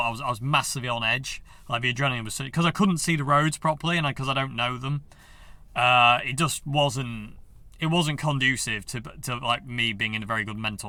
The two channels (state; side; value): identical; both; correlation 1.00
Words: massively on edge. Like the adrenaline was, because I couldn't see the roads properly, and because I don't know them, it just wasn't conducive to like me being in a very good